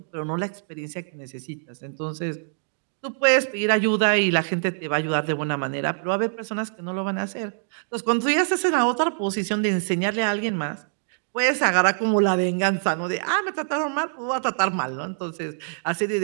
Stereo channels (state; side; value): silent; left; digital silence